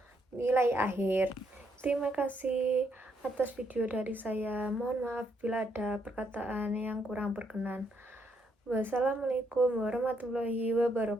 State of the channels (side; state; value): both; normal; correlation 0.74